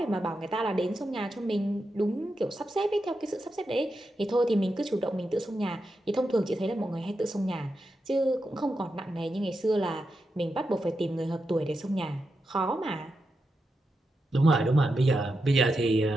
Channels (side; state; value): both; normal; correlation 0.87